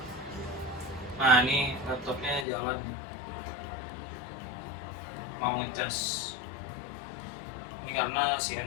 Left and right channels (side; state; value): right; drops out; at 2.5 s